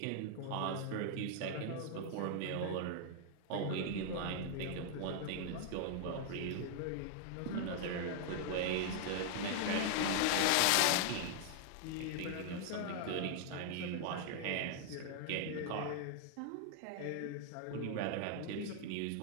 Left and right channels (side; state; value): both; different; correlation -0.01